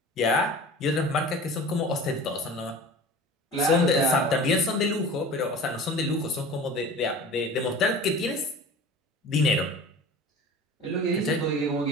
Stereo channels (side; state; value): both; normal; correlation 0.39